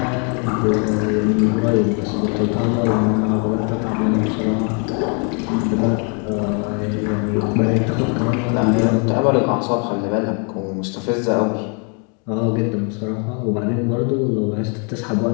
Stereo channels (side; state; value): right; quieter; 38.0 dB